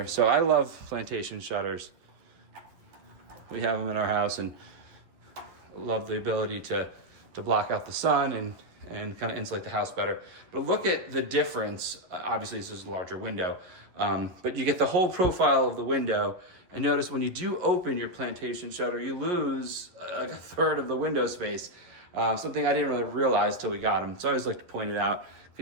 So I love plantation shutters. We have them in our house and love the ability to block out the sun and kind of insulate the house better. But look at the difference. Obviously, this is a larger window, but you get the whole profile of the window. And notice when you do open your plantation shutter, you lose like a third of the window space. Something I didn't really realize till we got them. So I always like to point it out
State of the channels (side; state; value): left; late; 11 ms